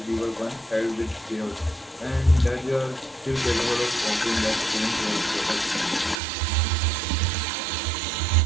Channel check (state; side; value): drops out; left; at 6.2 s